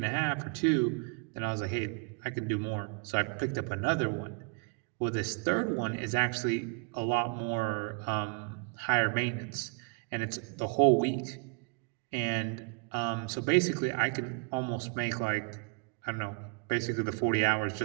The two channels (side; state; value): left; quieter; 37.2 dB